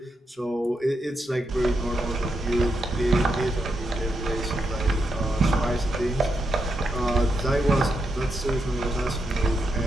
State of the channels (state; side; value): normal; both; correlation 0.83